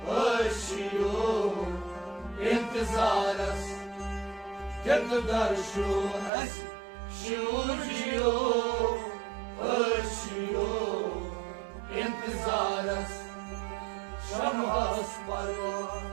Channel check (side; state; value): left; drops out; at 6.3 s